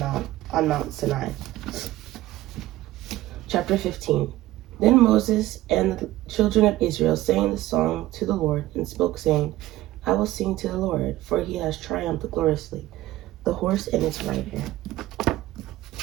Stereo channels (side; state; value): left; quieter; 16.1 dB